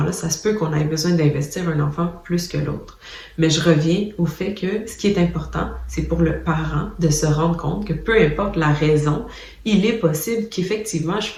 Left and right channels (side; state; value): both; identical; correlation 1.00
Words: ça se peut qu'on ait besoin d'investir un enfant plus que l'autre. Mais je reviens au fait que ce qui est important, c'est pour le parent de se rendre compte que peu importe la raison, il est possible qu'effectivement je